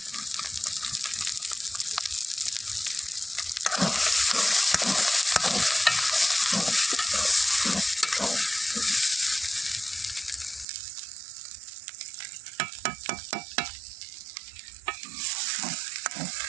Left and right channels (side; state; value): left; drops out; at 10.7 s